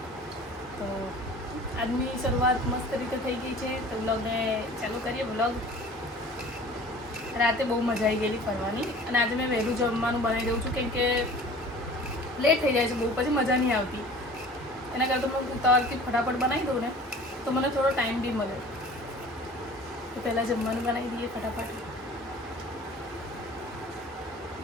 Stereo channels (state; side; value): normal; both; correlation 0.44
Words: તો આજની શરૂઆત મસ્ત રીતે થઈ ગઈ છે. તો બ્લોગને ચાલુ કરીએ. બ્લોગ રાતે બહુ મજા આવી ગયેલી ફરવાની, અને આજે મેં વહેલું જમવાનું બનાવી દઉં છું, કેમ કે લેટ થઈ જાય છે બહુ, પછી મજા નહીં આવતી. એના કરતાં હું ઉતાવળથી ફટાફટ બનાવી દઉં ને તો મને થોડો ટાઈમ બી મળે. તો પહેલાં જમવાનું બનાવી દઈએ ફટાફટ.